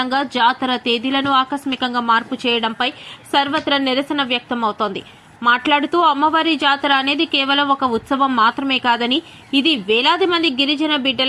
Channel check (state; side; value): identical; both; correlation 1.00